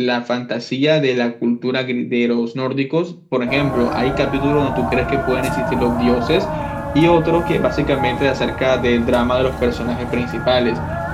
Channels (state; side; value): identical; both; correlation 1.00